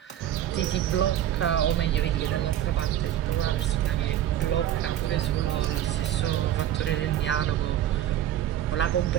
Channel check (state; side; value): quieter; left; 11.7 dB